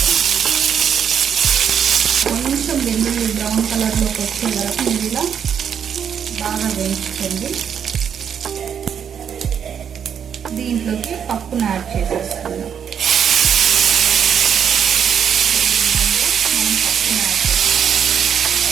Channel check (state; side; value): quieter; left; 8.0 dB